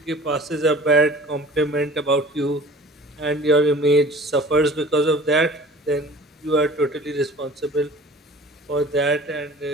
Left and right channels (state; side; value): normal; both; correlation 0.45